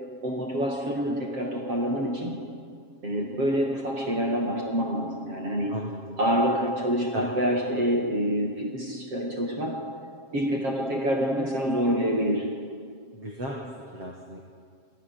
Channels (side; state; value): left; late; 7.5 ms